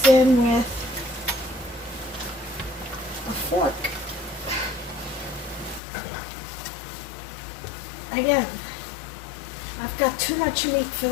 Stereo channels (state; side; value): drops out; right; at 5.8 s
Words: in with a fork. Again, I've got too much meat for